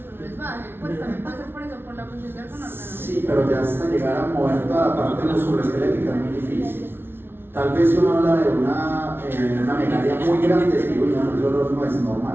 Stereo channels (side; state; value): left; late; 0.11 ms